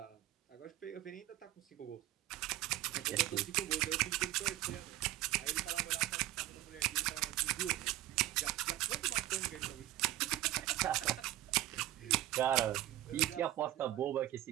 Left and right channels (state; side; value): quieter; left; 15.0 dB